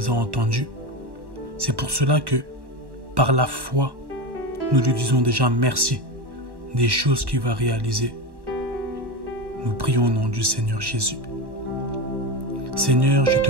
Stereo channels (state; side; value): late; left; 1.1 ms